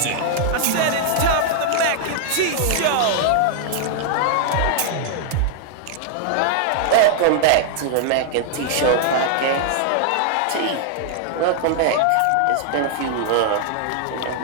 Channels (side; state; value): both; different; correlation 0.00